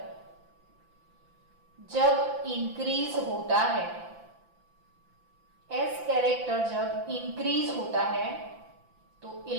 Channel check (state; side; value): late; left; 5.8 ms